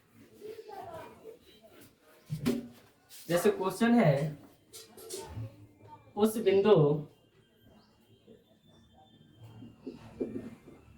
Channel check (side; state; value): both; identical; correlation 1.00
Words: जैसे क्वेश्चन है, उस